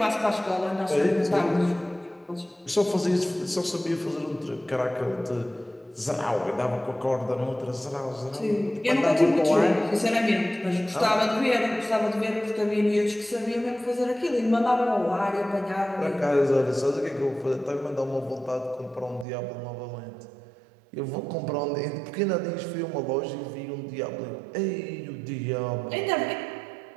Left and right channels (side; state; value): left; drops out; at 19.2 s